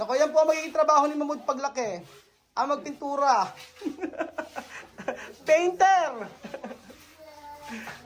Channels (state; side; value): identical; both; correlation 1.00